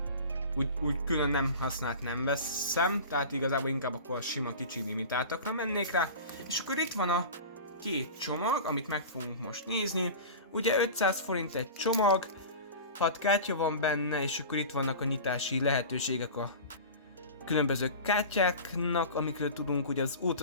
úgy külön nem használt nem veszem, tehát igazából inkább akkor a sima kicsi limitáltakra mennék rá. És akkor itt van a két csomag, amit meg fogunk most nézni. Ugye 500 forint egy csomag, 6 kártya van benne, és akkor itt vannak a nyitási lehetőségek a különböző kártyáknak, amikről tudunk, ugye az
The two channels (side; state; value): both; inverted; correlation -0.34